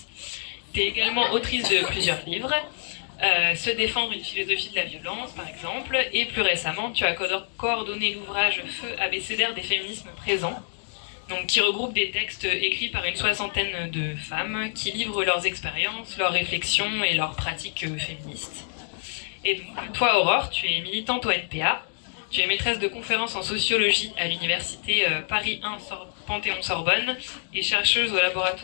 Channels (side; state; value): right; silent; digital silence